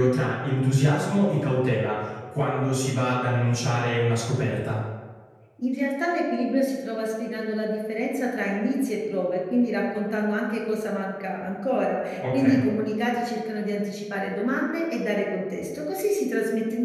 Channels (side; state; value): both; identical; correlation 1.00